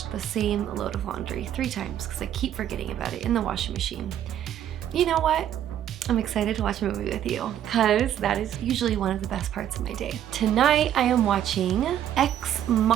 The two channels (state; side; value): quieter; left; 10.8 dB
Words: the same load of laundry 3 times because I keep forgetting about it in the washing machine. You know what? I'm excited to watch a movie with you because that is usually one of the best parts of my day. Tonight I am watching Ex